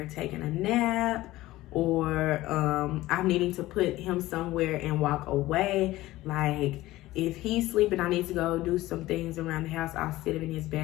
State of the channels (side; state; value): right; quieter; 17.0 dB